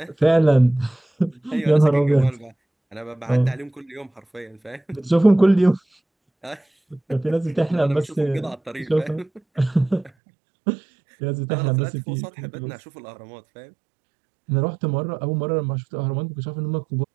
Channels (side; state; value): left; drops out; at 10.1 s